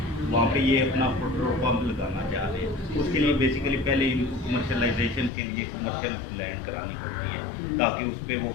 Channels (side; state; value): right; drops out; at 5.3 s